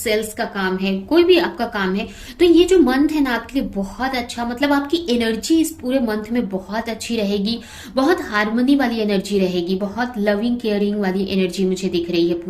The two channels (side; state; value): both; identical; correlation 1.00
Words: का काम है, कोई भी आपका काम है। तो ये जो मंथ है ना आपके लिए बहुत अच्छा, मतलब आपकी एनर्जी इस पूरे मंथ में बहुत अच्छी रहेगी। बहुत हारमोनी वाली एनर्जी रहेगी, बहुत लविंग केयरिंग वाली एनर्जी मुझे दिख रही है